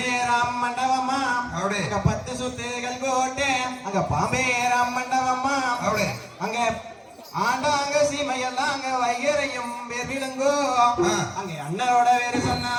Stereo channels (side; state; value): both; identical; correlation 1.00